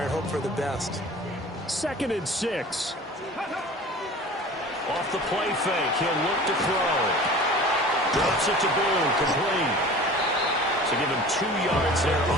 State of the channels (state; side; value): normal; both; correlation 0.41